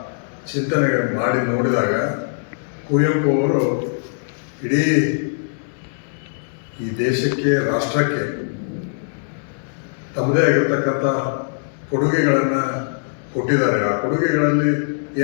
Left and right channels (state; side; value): silent; right; digital silence